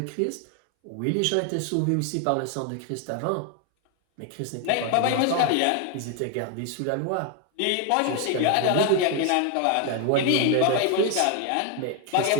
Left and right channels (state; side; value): different; both; correlation 0.01